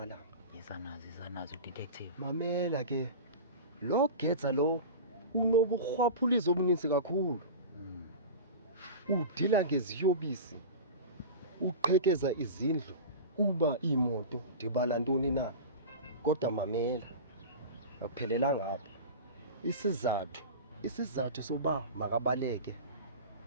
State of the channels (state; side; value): inverted; both; correlation -0.30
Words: Izanazi detective. Mamela ke. Lo getsa lo unobukhwaphulizo obuninzi kakhulu. Udila ngeziyobisi. Uqhekeza izindlu kuba imoto dibala ntoni na. Kodwa mamela. Akuphelela ngapha. Isizathu soba makabaleke